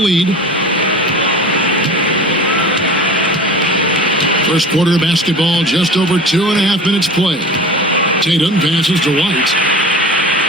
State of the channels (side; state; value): both; normal; correlation 0.37